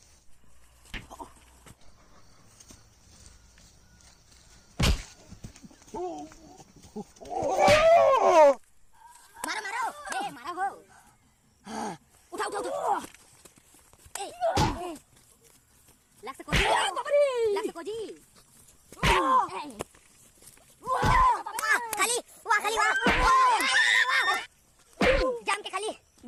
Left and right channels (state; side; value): identical; both; correlation 1.00